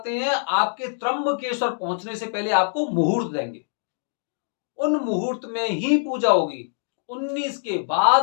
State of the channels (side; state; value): right; silent; digital silence